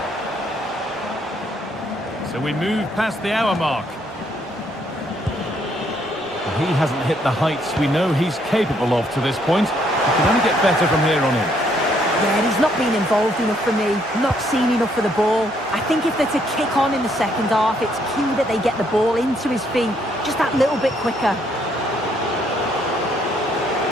So we move past the hour mark. He hasn't hit the heights we know he's capable of to this point. He can only get better from here on in. Yeah, he's not been involved enough for me, not seen enough for the ball. I think if they're to kick on in the second half, it's key that they get the ball into his feet just that little bit quicker.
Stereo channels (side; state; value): both; normal; correlation 0.70